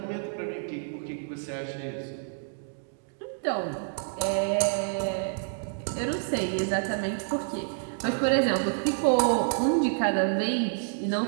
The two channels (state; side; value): silent; left; digital silence